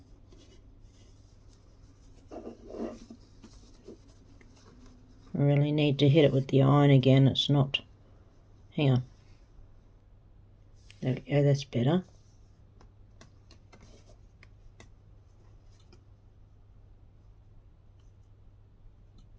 I really need to hit it with the iron again. It's not. Hang on. There we go, that's better.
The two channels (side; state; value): both; identical; correlation 1.00